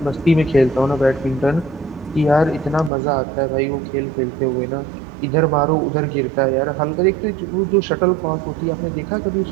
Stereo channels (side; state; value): left; drops out; at 2.9 s